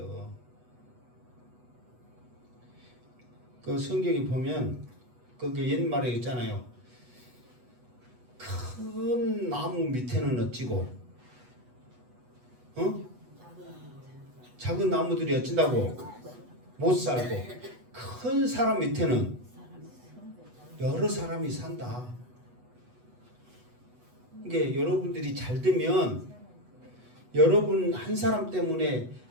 그 성경에 보면 거기 옛말에 있잖아요. 큰 나무 밑에는 어찌고 작은 나무들이 어쩐다고 못 살고 큰 사람 밑에는 여러 사람이 산다. 이게 여러분들이 잘 되면 여러분 한 사람 때문에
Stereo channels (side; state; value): left; late; 8.1 ms